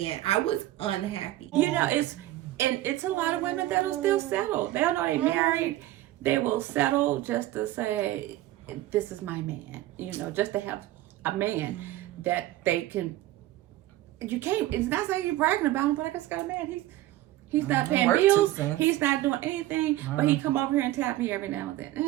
I was unhappy. You know, it's a lot of women that'll still settle. They'll know they're married. They will settle just to say, this is my man. You know, just to have a man that they can. You can't. It's not saying you're bragging about him, but I just got a man. He's not paying bills. He's not doing anything, but he come over here and tap me every now and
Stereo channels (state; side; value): quieter; left; 15.5 dB